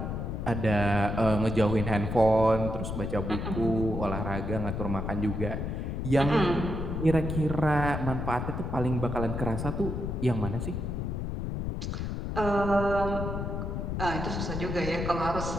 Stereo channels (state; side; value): noise; left; rumble, 3 dB below the sound